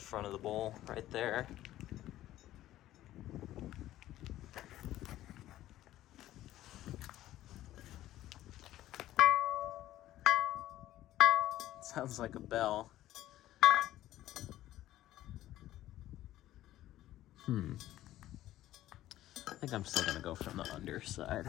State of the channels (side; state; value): right; quieter; 14.1 dB